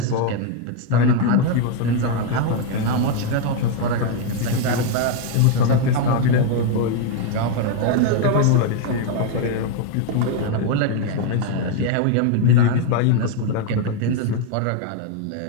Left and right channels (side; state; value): both; different; correlation 0.01